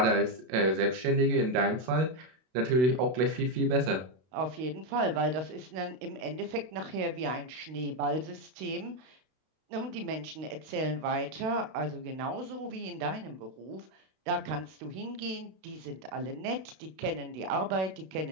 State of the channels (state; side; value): late; left; 32 ms